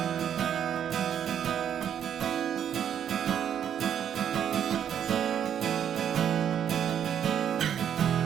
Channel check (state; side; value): quieter; left; 9.1 dB